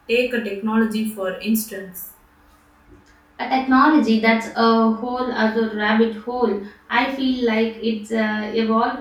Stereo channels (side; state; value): both; identical; correlation 1.00